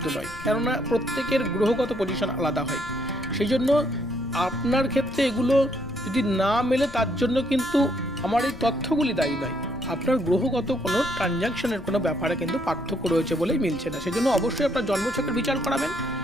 নয়, কেননা প্রত্যেকের গ্রহগত পজিশন আলাদা হয়। সেই জন্য আপনার ক্ষেত্রে এগুলো যদি না মেলে তার জন্য কিন্তু আমার এই তথ্যগুলি দায়ী নয়। আপনার গ্রহগত কোনো ট্রানজাকশনের কোনো ব্যাপারে কিন্তু পার্থক্য রয়েছে বলেই মিলছে না। সেজন্য অবশ্যই আপনার জন্মছকের বিচার করাবেন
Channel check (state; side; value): noise; left; rumble, 17 dB below the sound